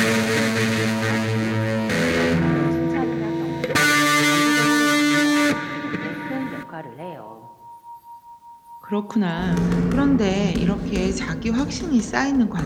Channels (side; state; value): both; identical; correlation 1.00